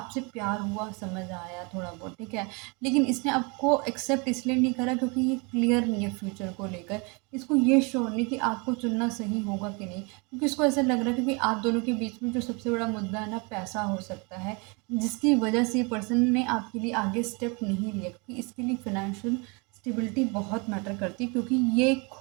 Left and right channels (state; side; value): quieter; left; 30.5 dB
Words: प्यार हुआ, समझ आया थोड़ा बहुत, ठीक है, लेकिन इसने आपको एक्सेप्ट इसलिए नहीं करा क्योंकि ये क्लियर नहीं है फ्यूचर को लेकर, इसको ये श्योर नहीं कि आपको चुनना सही होगा कि नहीं, क्योंकि इसको ऐसा लग रहा है क्योंकि आप दोनों के बीच में जो सबसे बड़ा मुद्दा है ना, पैसा हो सकता है, जिसकी वजह से ये पर्सन ने आपके लिए आगे स्टेप नहीं लिया, क्योंकि इसके लिए फिनेंशियल स्टेबिलिटी बहुत मैटर करती है, क्योंकि ये